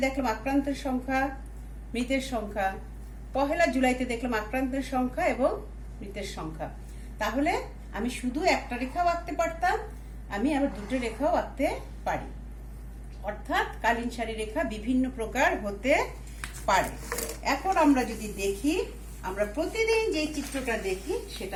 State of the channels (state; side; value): identical; both; correlation 1.00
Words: দেখলাম আক্রান্তের সংখ্যা, মৃতের সংখ্যা। 1 জুলাইতে দেখলাম আক্রান্তের সংখ্যা এবং মৃতের সংখ্যা। তাহলে আমি শুধু একটা রেখাও আঁকতে পারতাম, আমি আবার 2টো রেখাও আঁকতে পারি। অর্থাৎ কালীন সারি রেখা বিভিন্ন প্রকার হতে পারে। এখন আমরা যদি দেখি, আমরা প্রতিদিন যে চিত্রটা দেখি